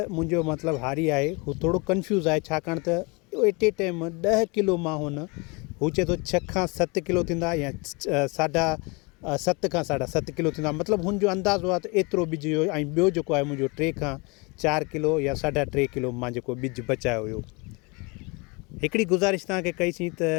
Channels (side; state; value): right; quieter; 28.6 dB